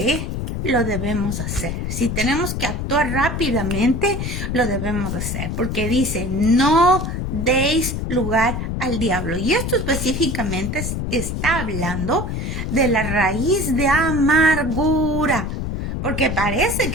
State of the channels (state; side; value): noise; left; rumble, 3 dB below the sound